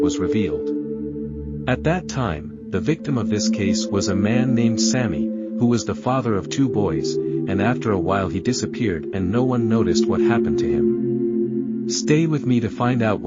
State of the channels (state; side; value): identical; both; correlation 1.00